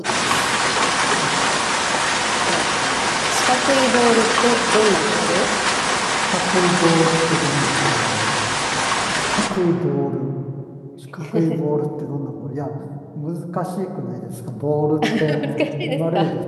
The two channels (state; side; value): identical; both; correlation 1.00